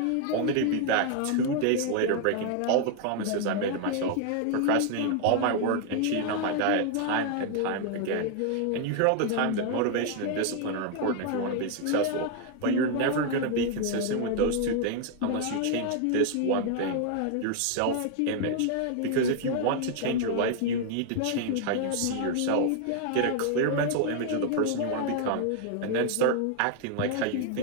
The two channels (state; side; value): different; both; correlation 0.00